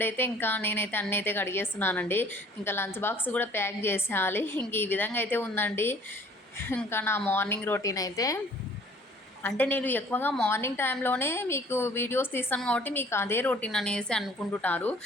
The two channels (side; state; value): both; normal; correlation 0.54